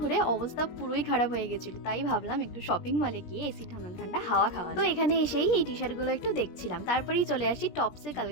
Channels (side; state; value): right; late; 17 ms